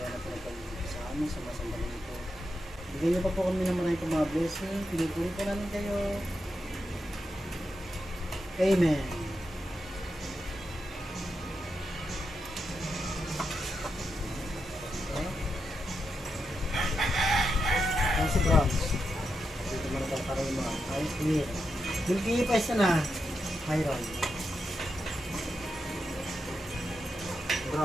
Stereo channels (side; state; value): both; normal; correlation 0.86